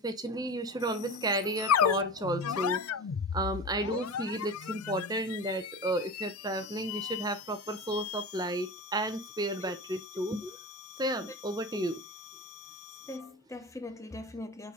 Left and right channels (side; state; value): both; normal; correlation 0.29